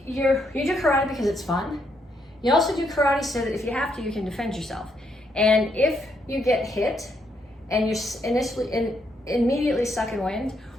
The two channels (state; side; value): normal; both; correlation 0.76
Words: You do karate because it's fun. You also do karate so that if you have to, you can defend yourself. And if you get hit and you're immediately sucking wind,